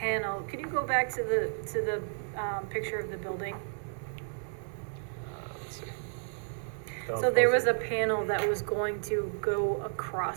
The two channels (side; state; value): left; silent; 56 dB below the other